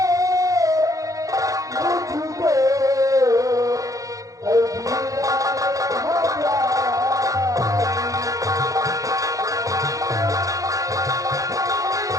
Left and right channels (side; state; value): left; late; 0.16 ms